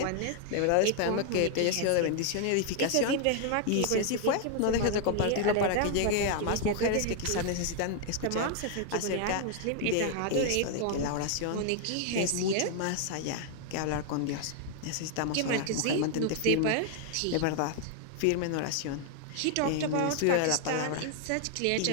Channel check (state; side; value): different; both; correlation 0.00